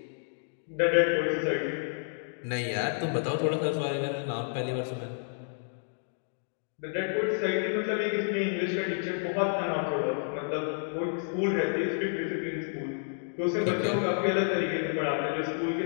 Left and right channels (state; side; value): silent; right; digital silence